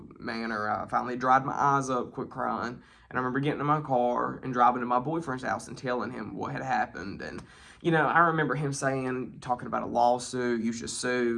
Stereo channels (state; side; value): identical; both; correlation 1.00